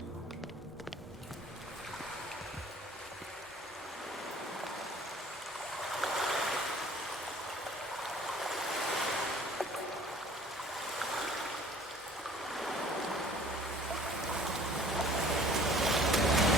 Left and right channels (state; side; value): normal; both; correlation 0.52